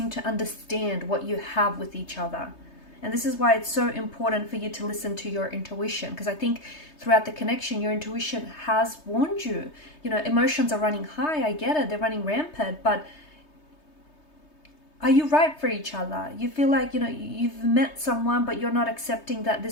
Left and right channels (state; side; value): late; right; 3.3 ms